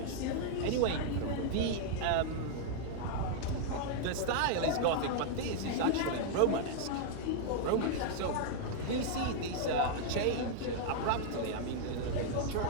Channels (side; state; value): both; different; correlation -0.01